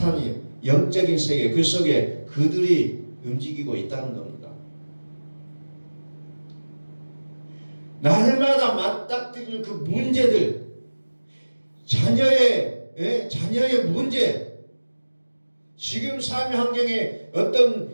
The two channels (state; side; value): inverted; both; correlation -1.00